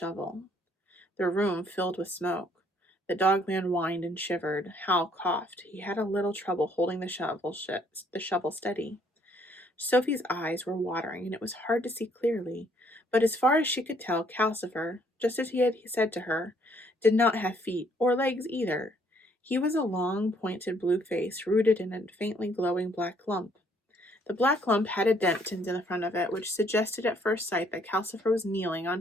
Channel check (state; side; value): normal; both; correlation 0.66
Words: The room filled with smoke. The dogman whined and shivered. Hal coughed. He had a little trouble holding the shovel steady. Sophie's eyes were watering, and it was hard to see clearly, but as far as she could tell, Calcifer, just as he had said to her, did not have feet or legs either. He was a long, pointed blue face rooted in a faintly glowing black lump. The black lump had a dent in the front of it, which suggested at first sight that Calcifer was kneeling